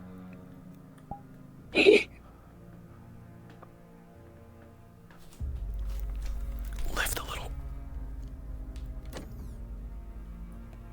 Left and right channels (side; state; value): both; identical; correlation 1.00